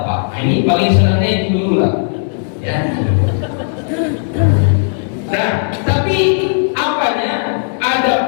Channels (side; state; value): right; silent; digital silence